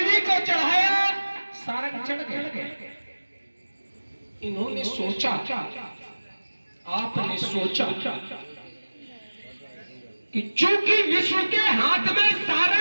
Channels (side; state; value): both; inverted; correlation -1.00